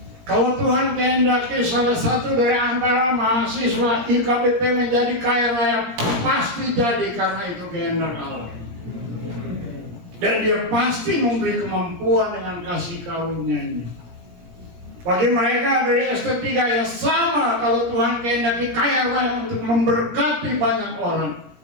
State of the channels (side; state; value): left; late; 17 ms